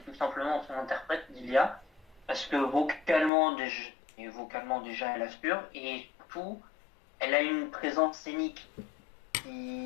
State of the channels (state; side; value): drops out; right; at 3.3 s